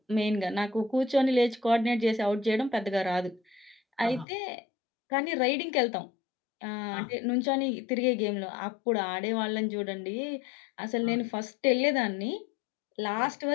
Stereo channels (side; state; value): right; drops out; at 4.2 s